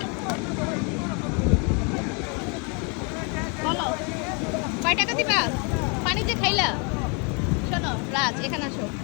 বলো? কয় টাকা দিবা? পানি যে খাইলা। শোনো রাজ, এখানে আসো।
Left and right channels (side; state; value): right; quieter; 34.1 dB